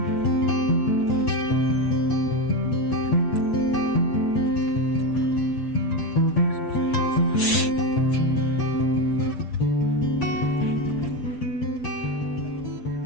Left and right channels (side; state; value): right; late; 7.8 ms